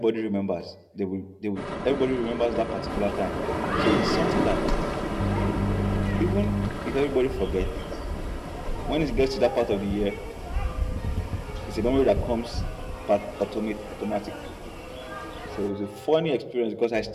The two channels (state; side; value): identical; both; correlation 1.00